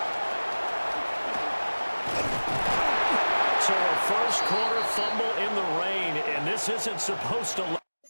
corner fumble in the rain, and this isn't supposed to let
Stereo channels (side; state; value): both; inverted; correlation -1.00